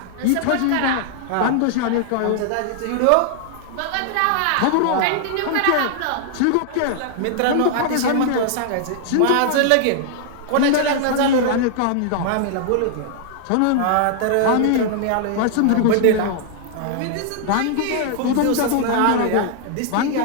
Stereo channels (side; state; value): both; different; correlation 0.00